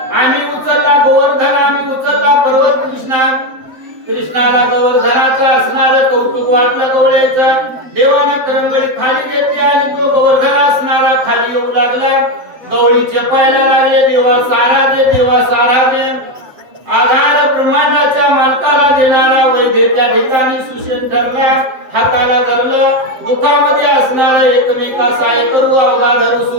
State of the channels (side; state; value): left; late; 7.7 ms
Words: आम्ही उचलला गोवर्धन आम्ही उचलला पर्वत कृष्णाला गोवर्धनाचं असणारं कौतुक वाटलं गवळ्याचं देवाने करंगळी खाली घेतली आणि तो गोवर्धन असणारा खाली येऊ लागला गवळी चपायला लागले देवा सारा दे आधार ब्रह्मांडाच्या मालकाला देणारा वैद्य त्या ठिकाणी सुशेन ठरला हाताला धरलं दुःखामध्ये असणारा एकमेका सहाय्य करू अवघा धरू